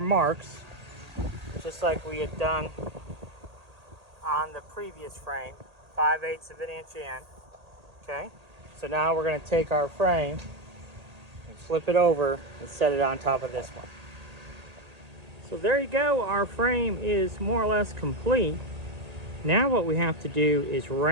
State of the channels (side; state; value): left; late; 1.8 ms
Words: just like we had done on the previous frame, 5/8 of an inch in. Okay, so now we're going to take our frame and flip it over and set it on top of this one. So there you go, our frame is more or less complete. Now what we have to do is